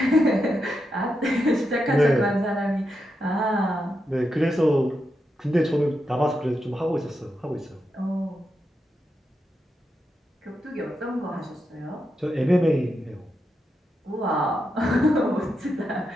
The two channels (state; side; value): normal; both; correlation 0.85